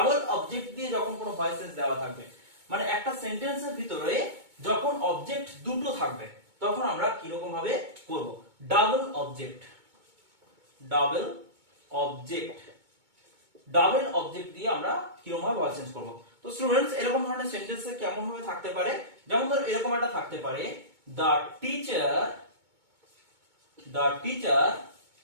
অবজেক্ট দিয়ে যখন কোনো ভয়েস চেঞ্জ দেওয়া থাকবে মানে একটা সেন্টেন্সের ভিতরে যখন অবজেক্ট দুটো থাকবে তখন আমরা কি রকম ভাবে করব ডাবল অবজেক্ট দিয়ে আমরা কিরকম ভাবে ভয়েস চেঞ্জ করব তো স্টুডেন্টস এরকম ধরনের সেন্টেন্সে কেমন ভাবে থাকতে পারে যেমন ধর এরকম একটা থাকতে পারে the teacher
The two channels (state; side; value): late; left; 2.2 ms